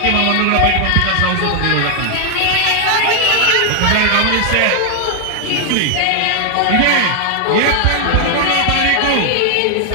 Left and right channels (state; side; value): different; both; correlation 0.00